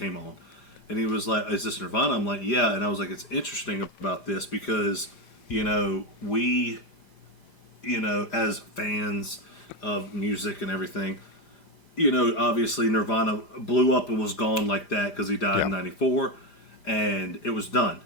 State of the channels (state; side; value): late; right; 4.9 ms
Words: on, and he was like, is this Nirvana? I'm like, yeah, and I was like, it's interesting about this because, we, as fans of music and everything, obviously Nirvana blew up and was gone like that because he died in Yeah. '94, and it was done,